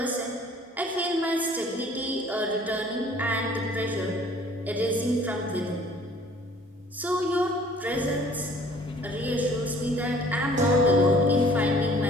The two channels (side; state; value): both; normal; correlation 0.54